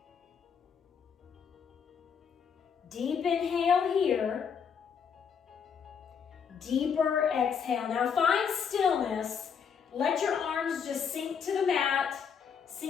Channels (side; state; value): right; quieter; 6.9 dB